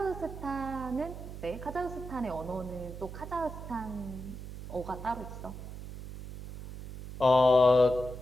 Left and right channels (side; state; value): right; noise; hum, 10 dB below the sound